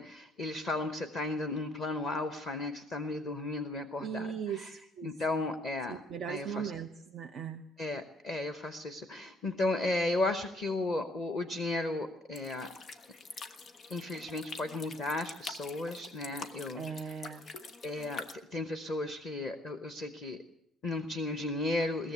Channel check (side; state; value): both; normal; correlation 0.63